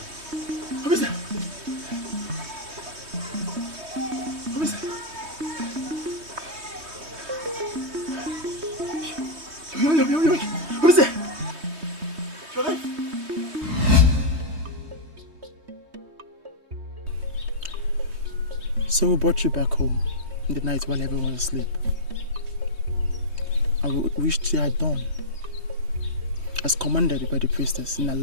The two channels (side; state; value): left; late; 3.2 ms